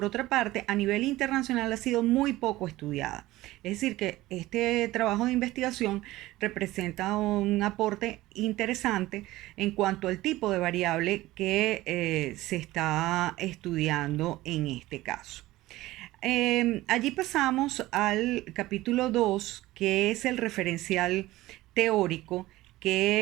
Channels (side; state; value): left; quieter; 17.4 dB